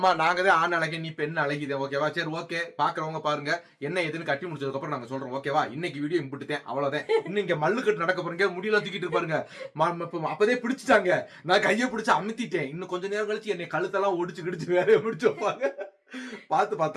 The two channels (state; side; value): identical; both; correlation 1.00